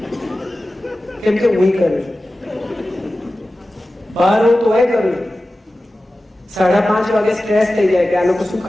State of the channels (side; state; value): both; normal; correlation 0.95